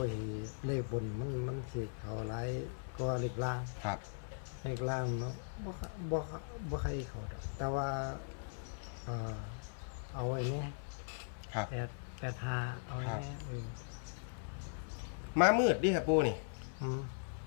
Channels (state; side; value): silent; right; 52 dB below the other